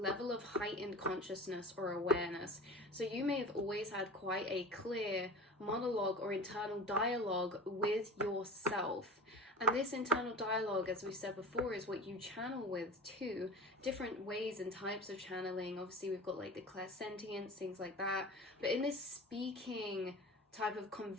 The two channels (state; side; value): normal; both; correlation 0.35